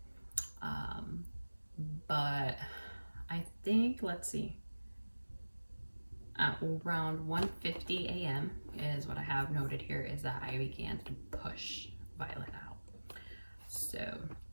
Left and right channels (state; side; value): inverted; both; correlation -1.00